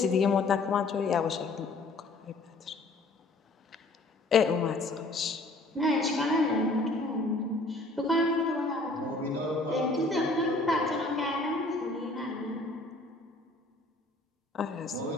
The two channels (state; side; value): quieter; right; 3.0 dB